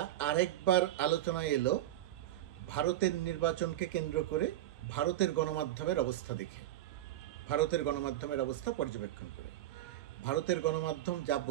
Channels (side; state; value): left; quieter; 13.6 dB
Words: আরেকবার আলোচনায় এলো ভারতের নির্বাচনকে কেন্দ্র করে ভারতের গণমাধ্যমের অবস্থা দেখে, ভারতের গণমাধ্যমের অবস্থা পর্যবেক্ষণ করে। ভারতের গণমাধ্যম যা